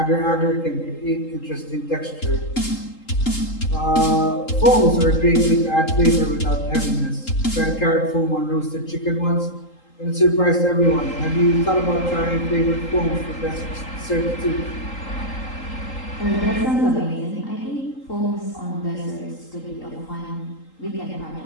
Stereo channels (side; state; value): right; late; 3.8 ms